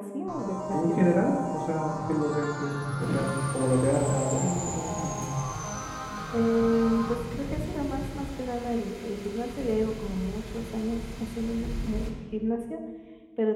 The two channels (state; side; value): identical; both; correlation 1.00